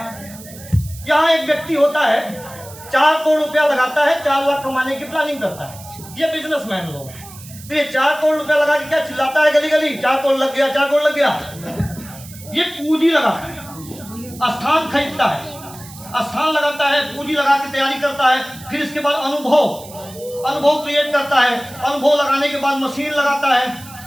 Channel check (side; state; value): right; noise; hiss, 18 dB below the sound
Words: यहाँ एक व्यक्ति होता है 4 करोड़ रुपया लगाता है, 4 लाख कमाने की प्लानिंग करता है। ये बिजनेसमैन लोग हैं। तो ये 4 करोड़ रुपया लगा के क्या चिल्लाता है गली गली, 4 करोड़ लग गया, 4 करोड़ लग गया। ये पूंजी लगाता है, स्थान खरीदता है, स्थान लगाता है, पूंजी लगा के तैयारी करता है। फिर इसके बाद अनुभव क्रिएट करता है। अनुभव लगाने के बाद मशीन लगाता है,